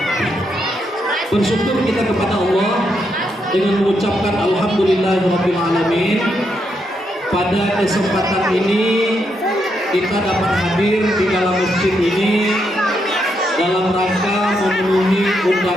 bersyukur kita kepada Allah dengan mengucapkan alhamdulillahirabbil alamin. Pada kesempatan ini kita dapat hadir di dalam masjid ini dalam rangka memenuhi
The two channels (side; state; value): both; normal; correlation 0.80